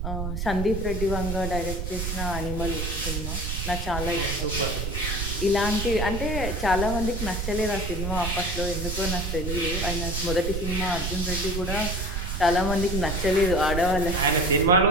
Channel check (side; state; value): right; noise; rumble, 3 dB below the sound